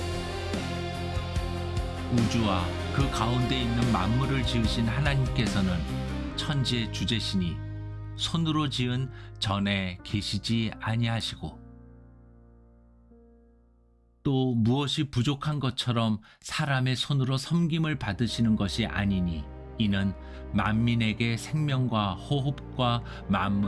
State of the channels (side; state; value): both; identical; correlation 1.00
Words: 우주와 그 가운데 있는 만물을 지으신 하나님께서는 천지의 주제시니 손으로 지은 전에 계시지 아니하시고 또 무엇이 부족한 것처럼 사람의 손으로 섬김을 받으시는 것이 아니니 이는 만민에게 생명과 호흡과